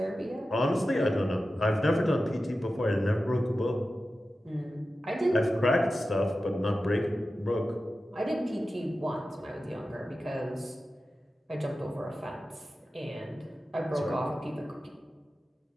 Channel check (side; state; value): both; normal; correlation 0.93